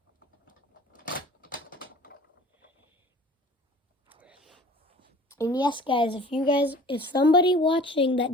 And yes guys, if somebody watching that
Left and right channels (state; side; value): normal; both; correlation 0.46